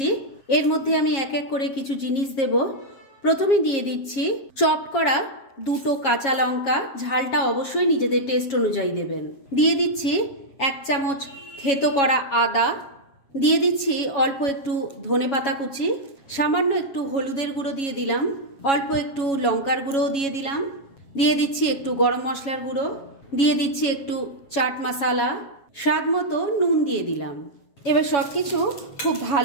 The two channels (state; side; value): late; right; 7.3 ms